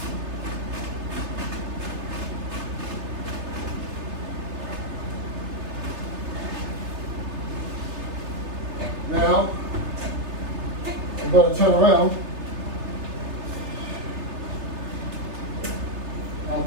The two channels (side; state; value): left; late; 3.3 ms